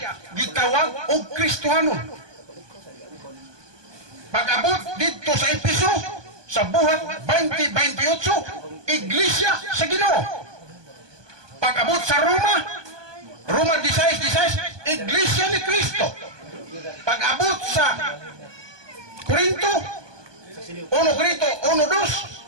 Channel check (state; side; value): late; left; 1.2 ms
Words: gitawag og Kristohanon. Pag-abot dito sa Episo, sa buhat 20:28, iglesia sa Ginoo. Pag-abot sa Roma 16:16, iglesia ni Kristo. Pag-abot sa Korinto